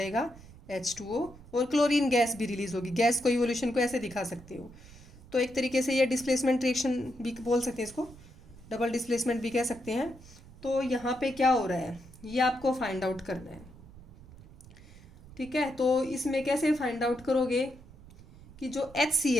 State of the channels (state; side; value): noise; right; rumble, 20 dB below the sound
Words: H2O, और क्लोरीन गैस भी रिलीज होगी। गैस को इवोल्यूशन को ऐसे दिखा सकते हो। तो एक तरीके से ये डिस्प्लेसमेंट रिएक्शन भी बोल सकते हैं, इसको डबल डिस्प्लेसमेंट भी कह सकते हैं। तो यहाँ पे क्या हो रहा है, ये आपको फाइंड आउट करना है। ठीक है, तो इसमें कैसे फाइंड आउट करोगे कि जो